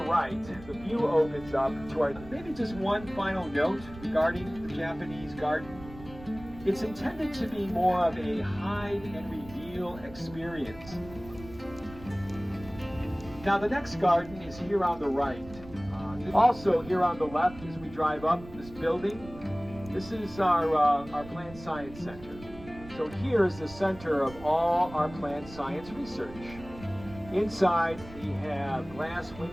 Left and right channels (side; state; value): right; noise; rumble, 17 dB below the sound